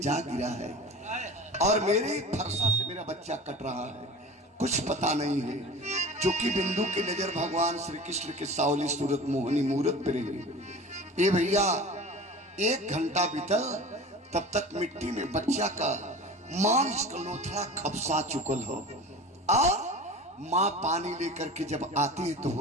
जा गिरा है और मेरे फरसा से मेरा बच्चा कट रहा है। कुछ पता नहीं है, क्योंकि बिंदु की नजर भगवान श्री कृष्ण के सावली सूरत मोहनी मूरत पे रही। ये भैया 1 घंटा बीतल, तब तक मिट्टी में बच्चा का मांस का लोथड़ा खपसा चुकल हो, और माँ पानी लेकर के जब आती है तो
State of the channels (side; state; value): both; normal; correlation 0.36